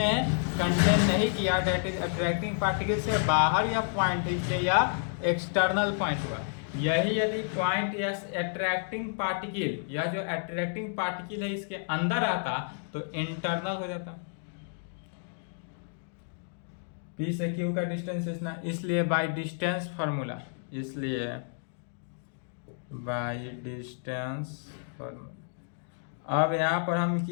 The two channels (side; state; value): right; silent; digital silence